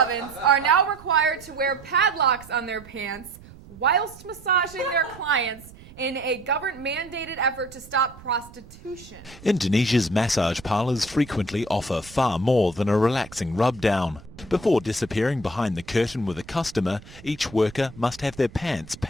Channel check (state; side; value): noise; right; rumble, 20 dB below the sound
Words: are now required to wear padlocks on their pants whilst massaging their clients in a government-mandated effort to stop prostitution. Indonesia's massage parlours frequently offer far more than a relaxing rub-down. Before disappearing behind the curtain with a customer, each worker must have their pants